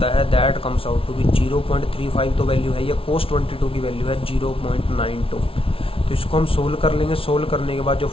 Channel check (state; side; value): late; right; 0.26 ms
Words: है that comes out to be 0.35, तो वैल्यू है ये, कोस 22 की वैल्यू है 0.92। तो इसको हम सोल्व कर लेंगे, सोल्व करने के बाद जो